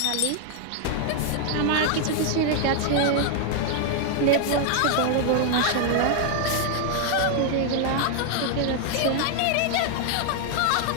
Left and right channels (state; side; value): different; both; correlation 0.00